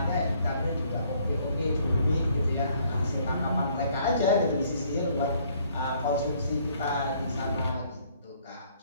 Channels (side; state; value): both; inverted; correlation -0.63